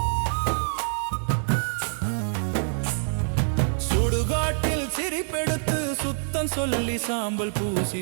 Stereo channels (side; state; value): left; silent; digital silence